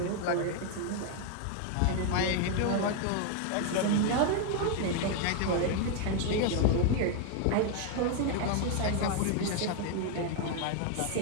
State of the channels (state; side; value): different; both; correlation 0.00